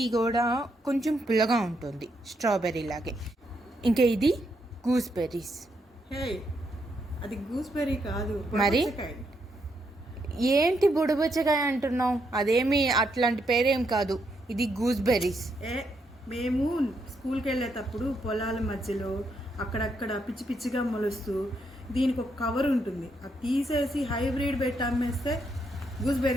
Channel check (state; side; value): normal; both; correlation 0.78